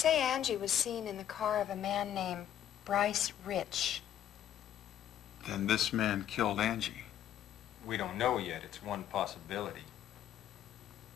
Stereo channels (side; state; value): right; quieter; 10.8 dB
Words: Angie was seen in the car of a man named Bryce Rich. Then this man killed Angie. We don't know yet. It's one possibility.